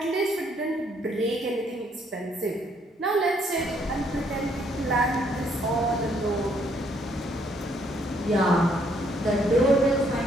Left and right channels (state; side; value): normal; both; correlation 0.68